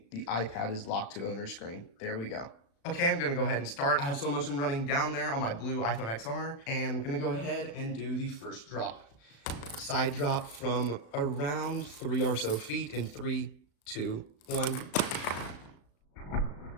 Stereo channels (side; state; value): right; late; 36 ms